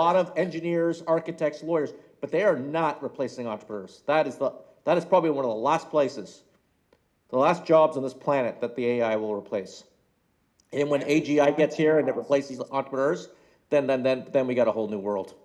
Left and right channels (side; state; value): both; identical; correlation 1.00